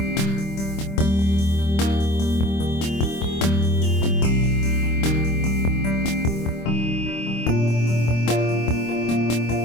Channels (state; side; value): late; right; 25 ms